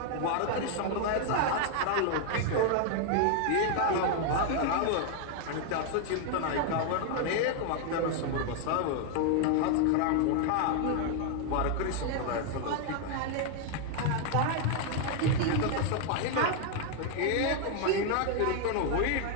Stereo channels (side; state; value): both; different; correlation 0.00